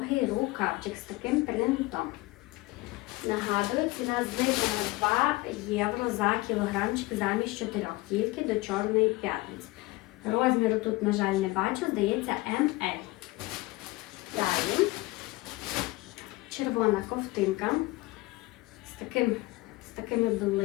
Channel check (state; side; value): quieter; right; 21.1 dB